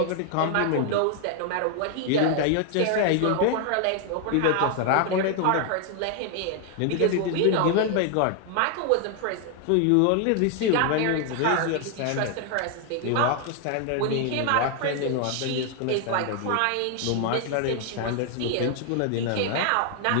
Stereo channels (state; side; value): different; both; correlation 0.00